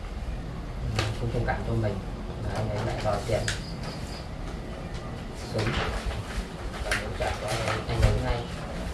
thông cảm cho mình, và anh ấy lại đòi tiền sớm và muốn trả cho anh ấy ngay.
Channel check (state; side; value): identical; both; correlation 1.00